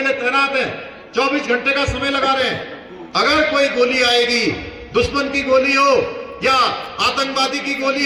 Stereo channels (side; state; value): both; identical; correlation 1.00